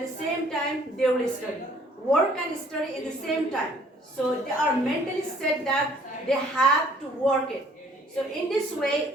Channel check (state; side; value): normal; both; correlation 0.58